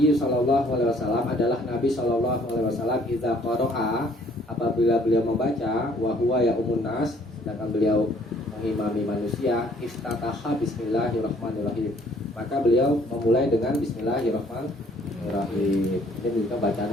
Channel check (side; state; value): both; normal; correlation 0.60